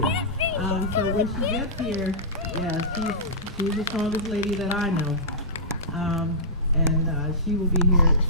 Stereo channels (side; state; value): both; normal; correlation -0.17